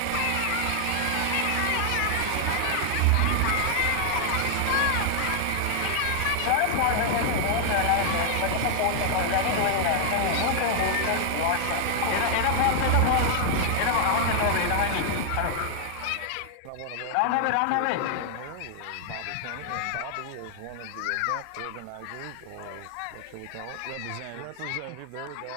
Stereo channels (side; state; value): both; different; correlation 0.00